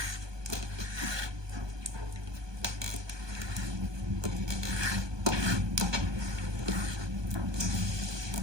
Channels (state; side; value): late; left; 1.2 ms